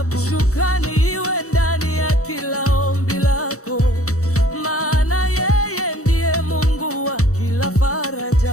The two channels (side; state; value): right; late; 0.65 ms